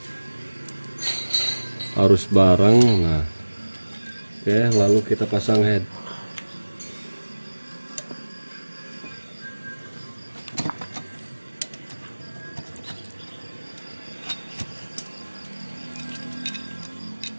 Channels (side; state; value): both; inverted; correlation -1.00